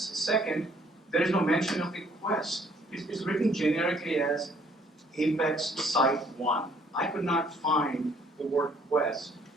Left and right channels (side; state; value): both; normal; correlation 0.62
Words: there is no mention of the quest. It's written generically as Apex Site 1. I could not find the word quest